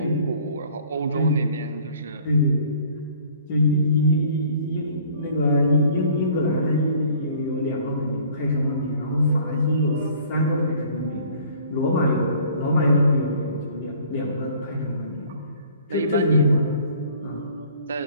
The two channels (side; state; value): both; inverted; correlation -0.53